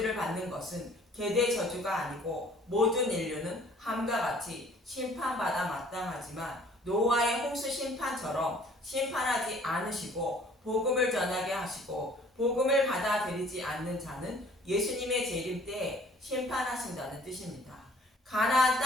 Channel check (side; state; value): both; normal; correlation 0.55